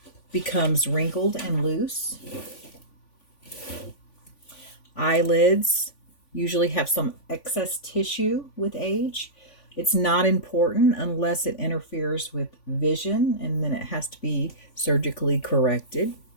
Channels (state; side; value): late; right; 3.5 ms